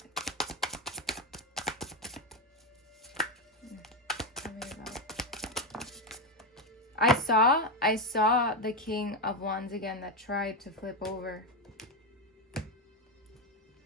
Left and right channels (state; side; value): normal; both; correlation 0.09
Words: Tell me about. I saw the King of Wands again that tried to flip over.